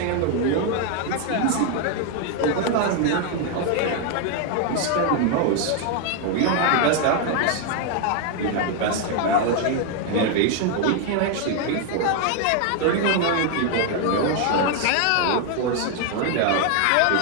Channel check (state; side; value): different; both; correlation 0.01